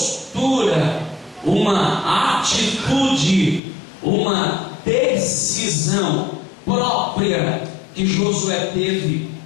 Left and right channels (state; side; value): drops out; right; at 3.6 s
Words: uma atitude, uma decisão própria que Josué teve